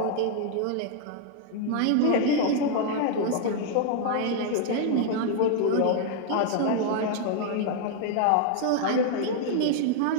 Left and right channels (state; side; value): different; both; correlation 0.00